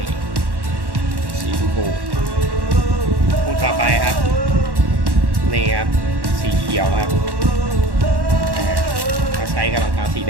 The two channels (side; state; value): left; late; 1.1 ms